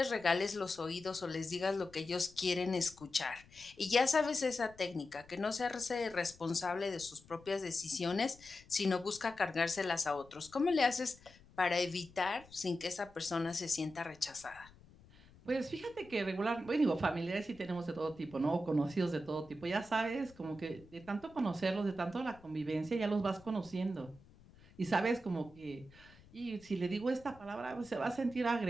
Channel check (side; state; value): left; noise; rumble, 24 dB below the sound